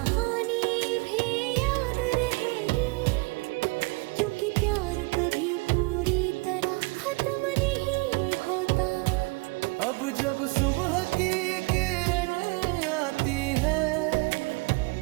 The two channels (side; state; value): left; quieter; 27.4 dB